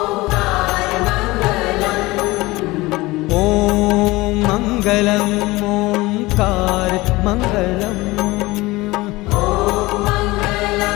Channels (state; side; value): quieter; right; 20.7 dB